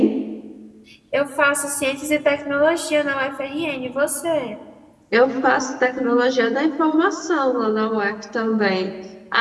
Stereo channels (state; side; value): identical; both; correlation 1.00